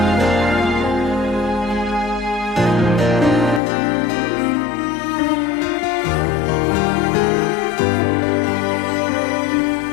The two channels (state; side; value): drops out; right; at 3.6 s